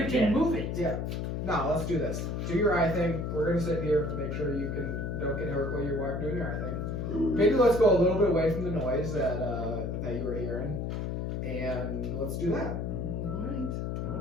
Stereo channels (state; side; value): noise; left; hum, 2 dB below the sound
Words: again. move it. Yeah. No, let's do this. Do your eye thing. We're gonna sit here, make sure you don't get hurt while you're doing your eye thing. Maybe let's go a little bit away from the noise that you were hearing, and let's do that. Alright.